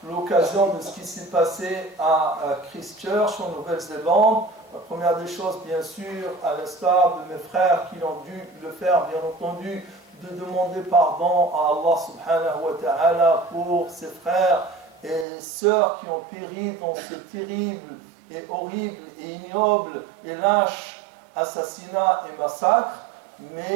l'occasion de ce qui s'est passé à Christchurch en Nouvelle-Zélande. La première des choses, bien sûr, à l'instar de mes frères qui ont dû le faire, bien entendu, de demander pardon à Allah subhanahu wa ta'ala pour ses frères et sœurs qui ont péri dans ce terrible et horrible et ignoble et lâche assassinat et massacre,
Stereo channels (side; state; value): left; drops out; at 15.2 s